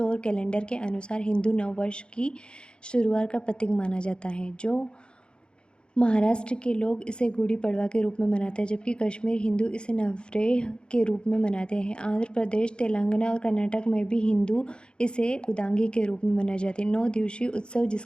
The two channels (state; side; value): late; right; 0.052 ms